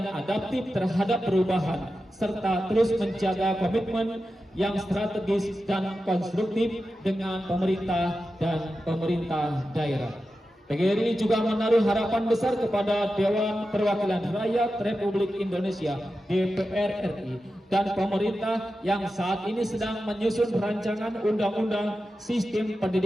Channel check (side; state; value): both; normal; correlation 0.91